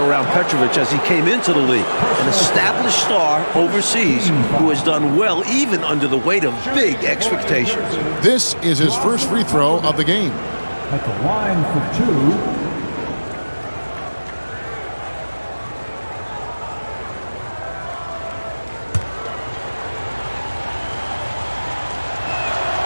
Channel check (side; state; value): both; inverted; correlation -1.00